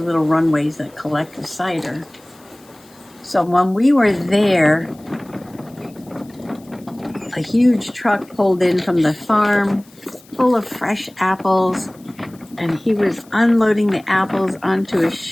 runways that collect the cider. So when we were there, a huge truck pulled in from the farm full of fresh apples, and he was unloading the apples onto a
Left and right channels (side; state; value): left; noise; hiss, 28 dB below the sound